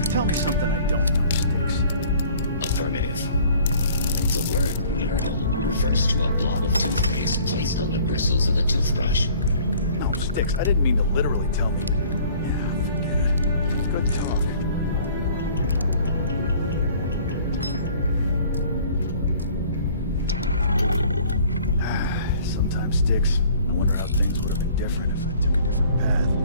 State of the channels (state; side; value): inverted; both; correlation -0.53